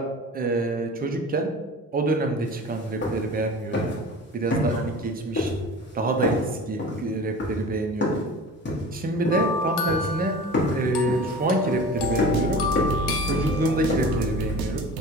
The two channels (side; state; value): both; normal; correlation 0.37